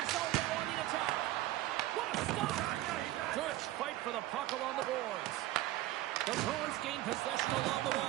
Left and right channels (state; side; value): quieter; left; 15.9 dB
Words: zone now on the attack. What a stop! Good fight for the puck along the boards. The Bruins gain possession along the